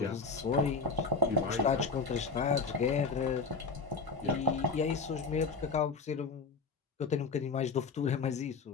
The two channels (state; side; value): quieter; right; 4.6 dB